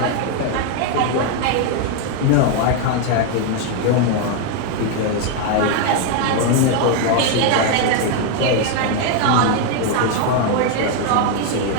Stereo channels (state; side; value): different; both; correlation 0.01